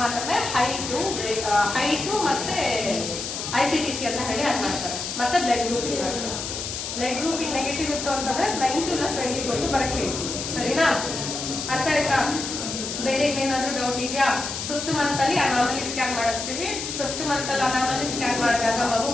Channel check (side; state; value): left; noise; hiss, 5 dB below the sound